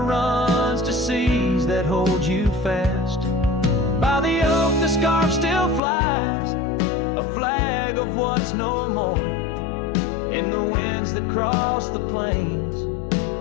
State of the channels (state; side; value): drops out; right; at 5.8 s